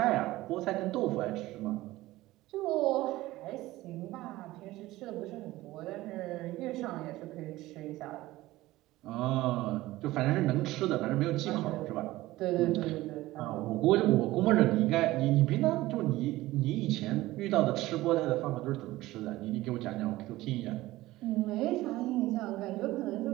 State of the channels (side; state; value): left; quieter; 17.5 dB